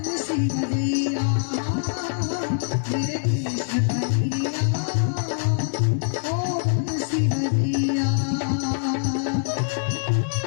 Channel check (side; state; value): right; silent; digital silence